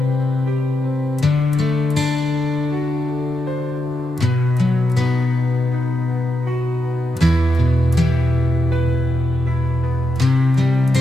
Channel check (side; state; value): both; normal; correlation 0.85